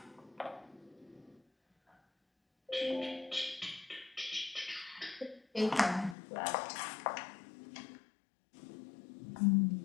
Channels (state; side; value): drops out; right; at 6.2 s